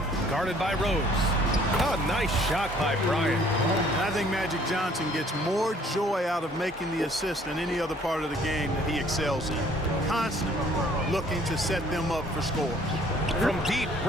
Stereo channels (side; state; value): both; normal; correlation 0.58